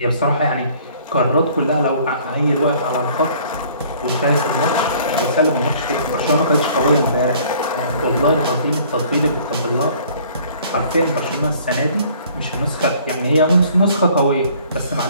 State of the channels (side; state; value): both; inverted; correlation -0.55